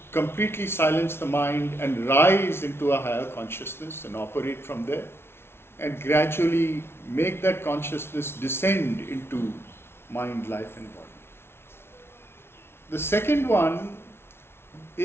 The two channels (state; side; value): late; right; 0.12 ms